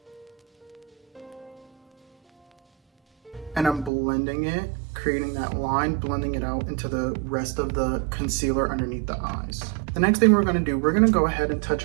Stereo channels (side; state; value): left; drops out; at 3.9 s